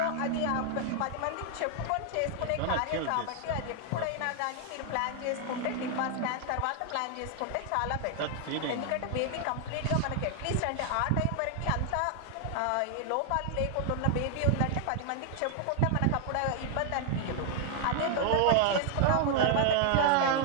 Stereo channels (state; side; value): different; both; correlation 0.00